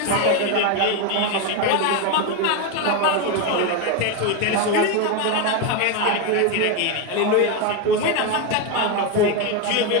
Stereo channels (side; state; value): both; different; correlation 0.03